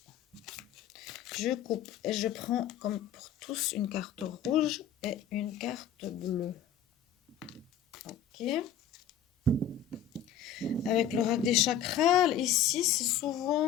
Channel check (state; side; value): quieter; right; 8.3 dB